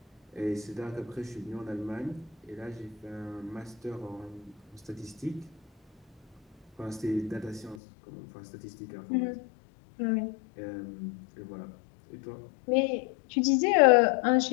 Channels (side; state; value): right; drops out; at 7.8 s